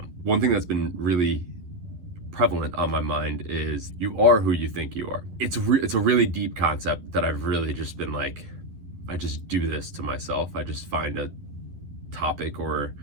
One thing that's been really prevalent on my mind is you are who you think you are. It's a really deep concept that I've really just been like, I just do this to myself. I just find a topic or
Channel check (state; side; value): late; left; 11 ms